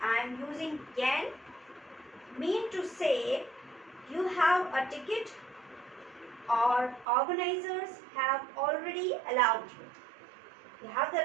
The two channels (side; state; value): left; drops out; at 7.1 s